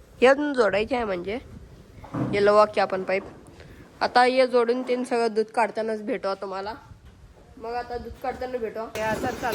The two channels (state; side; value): identical; both; correlation 1.00